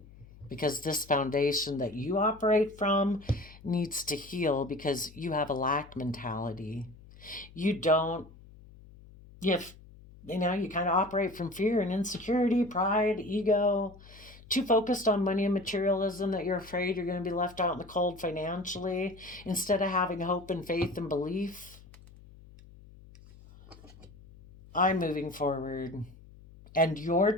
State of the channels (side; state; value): left; noise; hum, 21 dB below the sound